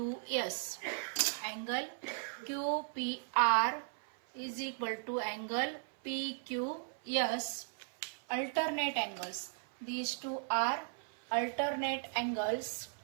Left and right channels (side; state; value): left; silent; 53 dB below the other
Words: Angle QPR is equal to angle PQS. Alternate angles. These two are alternate angles.